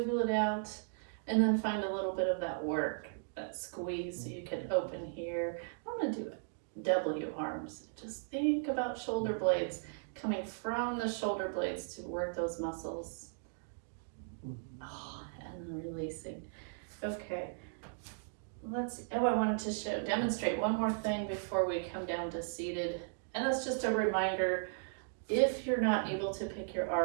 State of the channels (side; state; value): left; silent; digital silence